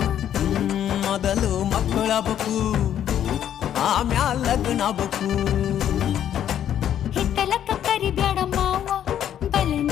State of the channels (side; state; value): right; quieter; 10.3 dB